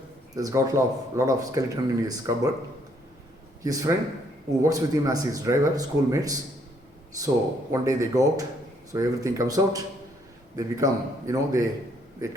He's got a lot of skeleton in his cupboard. His friend, who works with him as his driver, schoolmates. So one day they go out. So everything comes out. They become, they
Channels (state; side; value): normal; both; correlation 0.68